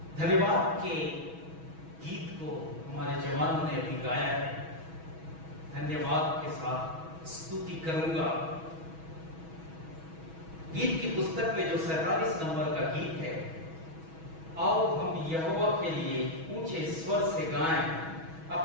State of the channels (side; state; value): left; late; 6.2 ms